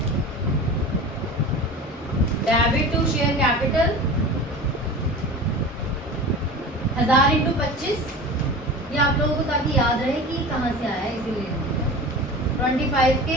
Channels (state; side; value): normal; both; correlation 0.34